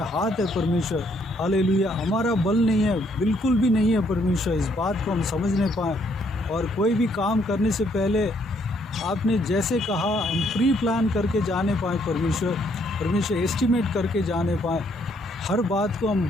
है परमेश्वर। हालेलुया। हमारा बल नहीं है, बिल्कुल भी नहीं है परमेश्वर। इस बात को हम समझने पाएँ और कोई भी काम करने से पहले आपने जैसे कहा हम प्री प्लान करके जाने पाएँ परमेश्वर, एस्टिमेट करके जाने पाएँ। हर बात को हम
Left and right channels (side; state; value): both; normal; correlation 0.69